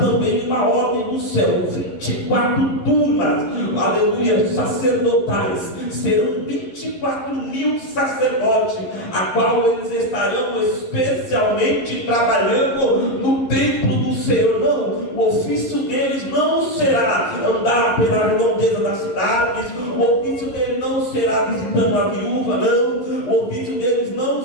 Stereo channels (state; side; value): late; right; 11 ms